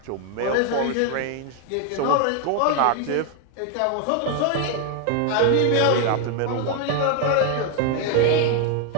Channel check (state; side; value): different; both; correlation 0.01